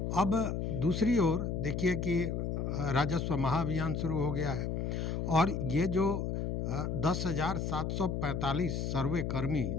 अब दूसरी ओर देखिए कि राजस्व महाअभियान शुरू हो गया है और ये जो 10,745 सर्वे कर्मी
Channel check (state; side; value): noise; left; hum, 1 dB below the sound